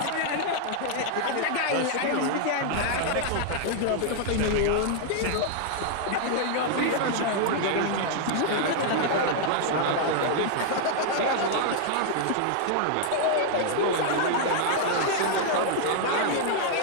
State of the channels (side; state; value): both; different; correlation -0.01